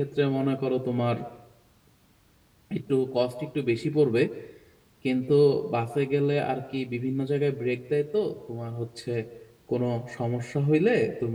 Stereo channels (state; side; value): identical; both; correlation 1.00